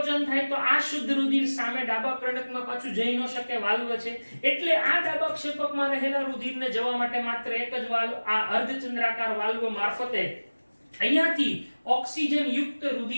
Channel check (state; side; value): inverted; both; correlation -1.00